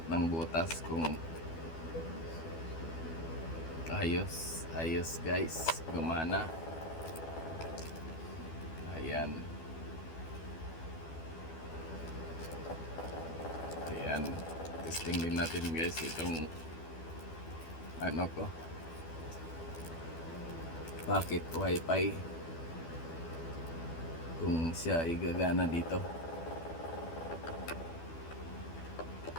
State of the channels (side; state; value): right; late; 12 ms